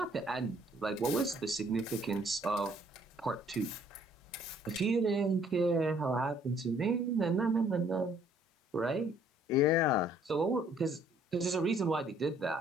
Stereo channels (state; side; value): normal; both; correlation 0.61